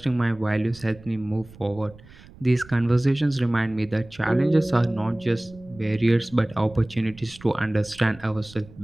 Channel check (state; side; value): noise; right; rumble, 22 dB below the sound